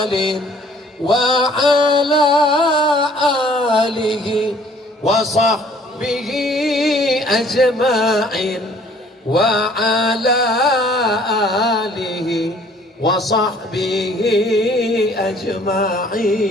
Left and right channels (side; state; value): both; normal; correlation 0.57